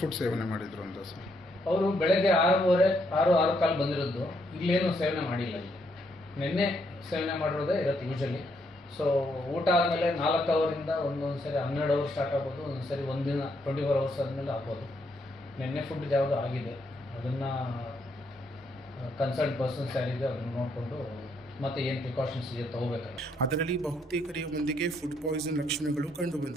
ಸೇವನೆ ಮಾಡಿದ್ರು ಅಂತ ಸರ್? ಅವರು ಬೆಳಗ್ಗೆ 6:15 ಬಂದಿರೋದು. ಇಲ್ಲೇನು ಸೇವನೆ ಮಾಡಿಲ್ಲ. ಇಲ್ಲಿ ನಿನ್ನೆ ಸೇವನೆ ಮಾಡಿರೋದೇ ಇರುತ್ತೆ ಯೂಶಲಿ. ಸೊ ಊಟ ಆದಮೇಲೆ 4 ಅವರಿಂದ ಒಂದೊಂದು ಸರಿ 12 ಅವರ್ ಸ್ಟಾರ್ಟ್ ಆಗ್ಬೋದು, ಒಂದೊಂದು ಸರಿ ಒಂದಿನ 24 ಅವರ್ಸ್ ಆದಮೇಲೆ ಆಗ್ಬೋದು. ನಿನ್ನೆ ಫುಡ್ ಯಾವುದು ಆಗಿದೆ ಅದನ್ನು ಕನ್ಸಲ್ಟ್ ಪರ್ಸನ್ಸ್ ಯಾರಿದೆ ಅದನ್ನು ನೋಡಿಕೊಂಡು ಮತ್ತೆ ಏನು ಪ್ರಿಕಾಷನ್ಸ್ ಇದೆ ತಗೋಬೇಕಾಗುತ್ತೆ. ಅದರಲ್ಲಿ ಬಹುತೇಕರೆಯ ಮಂದಿಗೆ ಫುಡ್ ಪಾಯ್ಸನ್ ಲಕ್ಷಣಗಳು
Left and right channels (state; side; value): normal; both; correlation 0.74